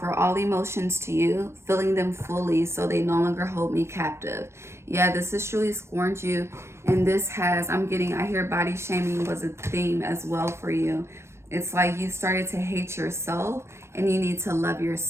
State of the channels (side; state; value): left; late; 0.13 ms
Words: all emotions to you, feeling them fully so they no longer hold me captive. Yeah, this has truly scorned you. And this has, I hear body shaming was a theme as well for you. It's like you started to hate yourself and you need to love